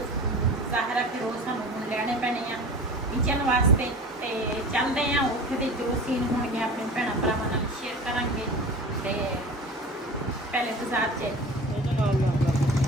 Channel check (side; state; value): both; normal; correlation 0.37